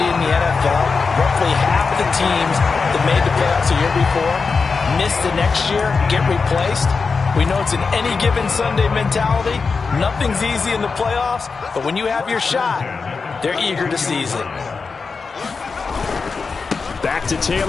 in the NFL? Roughly half of the teams that made the playoffs a year before miss the next year, get replaced. We know it's an any given Sunday mentality. Nothing's easy in the playoffs, but when you have your shot, they're eager to seize it. Back to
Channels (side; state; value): right; quieter; 4.8 dB